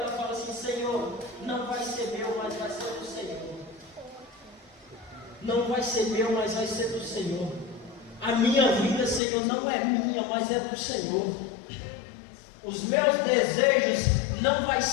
fala assim: Senhor, não vai ser meu, mas vai ser do Senhor. Não vai ser meu, mas vai ser do Senhor. A minha vida, Senhor, não é minha, mas é do Senhor. Os meus desejos não vai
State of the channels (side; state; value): right; drops out; at 9.2 s